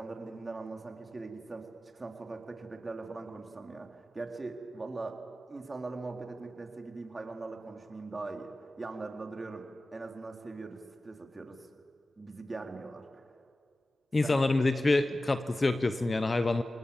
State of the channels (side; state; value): both; normal; correlation 0.95